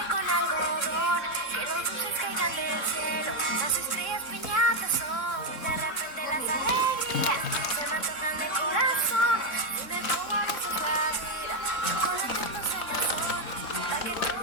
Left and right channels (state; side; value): late; right; 3.6 ms